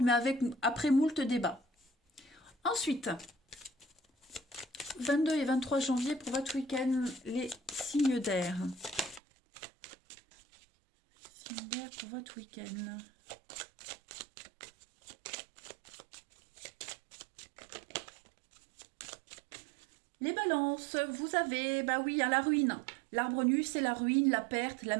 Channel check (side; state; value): left; drops out; at 9.2 s